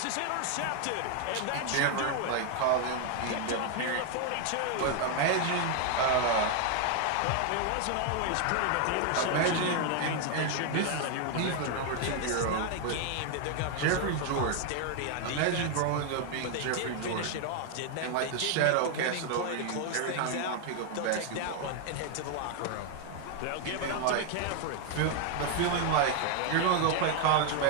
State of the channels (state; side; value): different; both; correlation 0.01